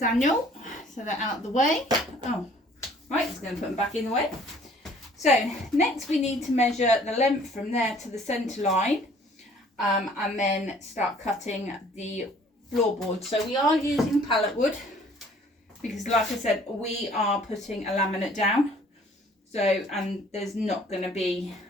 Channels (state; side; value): normal; both; correlation 0.55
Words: so they're out of the way. Oh, right, just going to put them back in the way. So next we need to measure the length from there to the centre line, and then start cutting the floorboard. So we are using pallet wood because, like I said, we are putting a laminate down. So, and there's not going to be,